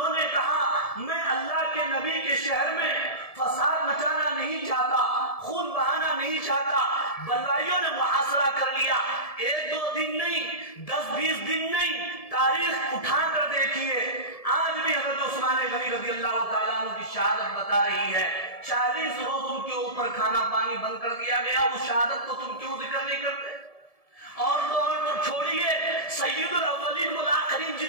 نے کہا میں اللہ کے نبی کے شہر میں فساد مچانا نہیں چاہتا، خون بہانا نہیں چاہتا۔ بلوائیوں نے محاصرہ کر لیا، 1-2 دن نہیں، 10-20 دن نہیں، تاریخ اٹھا کر دیکھیے، آج بھی حضرت عثمان غنی رضی اللہ تعالیٰ عنہ کی شہادت بتا رہی ہے 40 روز ان کے اوپر کھانا پانی بند کر دیا گیا۔ اس شہادت کو تم کیوں ذکر نہیں کرتے؟ اور تو چھوڑیے، سید الاولین والآخرین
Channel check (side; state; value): right; late; 1.7 ms